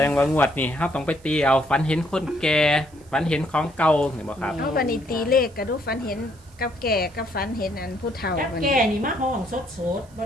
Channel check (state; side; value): noise; right; hiss, 28 dB below the sound